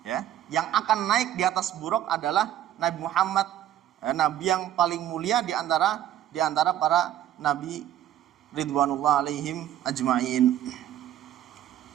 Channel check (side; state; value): left; quieter; 11.8 dB